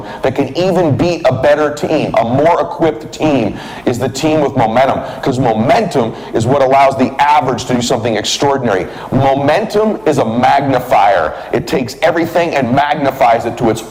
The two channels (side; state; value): right; noise; hum, 28 dB below the sound